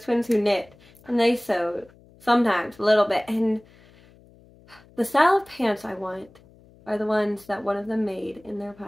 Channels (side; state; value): left; noise; hum, 27 dB below the sound